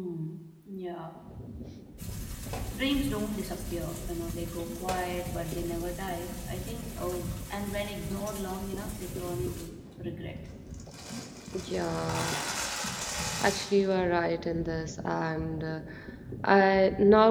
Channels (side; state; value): both; identical; correlation 1.00